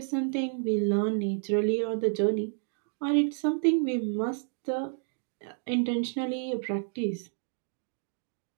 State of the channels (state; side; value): silent; left; digital silence